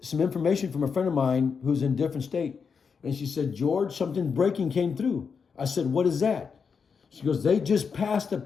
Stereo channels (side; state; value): right; quieter; 5.9 dB